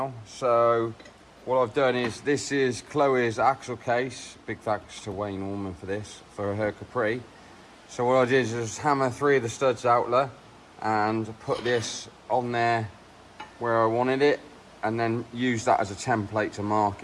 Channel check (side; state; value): both; identical; correlation 1.00